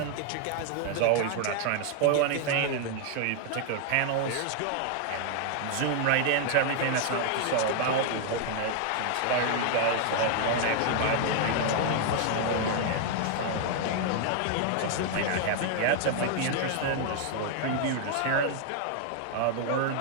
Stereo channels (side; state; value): both; different; correlation 0.00